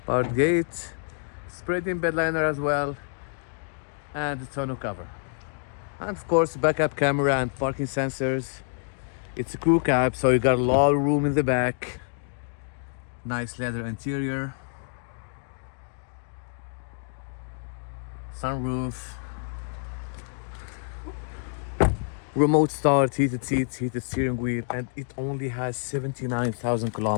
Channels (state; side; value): silent; right; digital silence